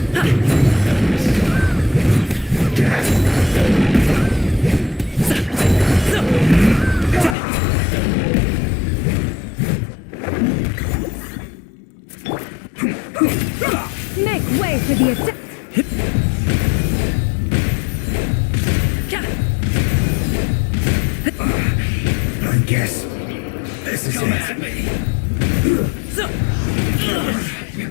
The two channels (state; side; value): drops out; right; at 7.4 s